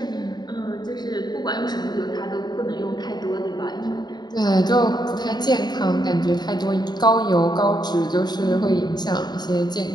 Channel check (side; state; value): right; late; 0.20 ms